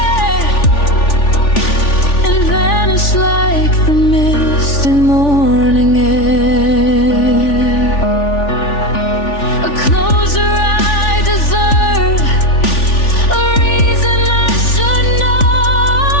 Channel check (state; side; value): late; right; 3.4 ms